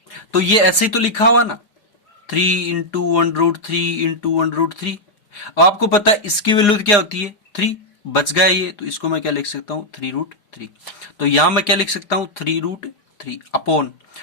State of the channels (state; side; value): late; right; 4.8 ms